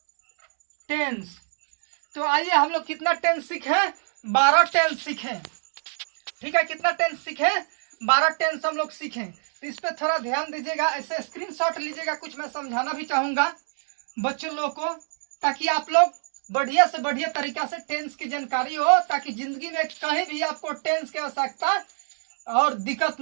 टेंस। तो आइए हम लोग कितना टेंस सीखे? 12 टेंस सीखे। ठीक है, कितना टेंस सीखे? 12 टेंस हम लोग सीखे। तो इस पे थोड़ा ध्यान दीजिएगा, ऐसे स्क्रीनशॉट लीजिएगा। कुछ मैं समझाना भी चाहूंगा बच्चों लोग को, ताकि आप लोग बढ़िया से बढ़िया तरीका से टेंस की जानकारी हो, ताकि जिंदगी में कहीं भी आपको टेंस की आवश्यकता और दिक्कत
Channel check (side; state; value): left; silent; 62 dB below the other